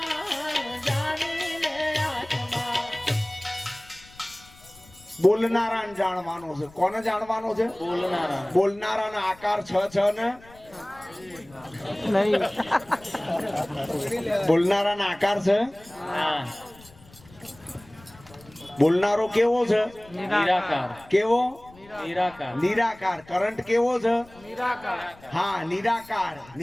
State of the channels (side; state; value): left; noise; rumble, 24 dB below the sound